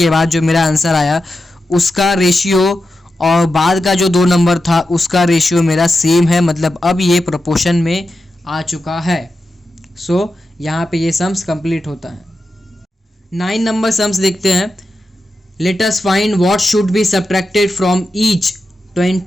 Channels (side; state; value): both; normal; correlation 0.90